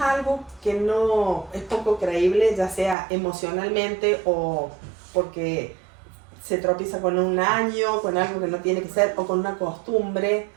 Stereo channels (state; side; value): drops out; left; at 3.0 s